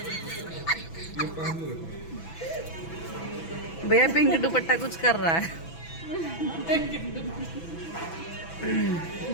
भैया पिंक दुपट्टा कुछ कर रहा है।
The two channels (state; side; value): late; right; 6.0 ms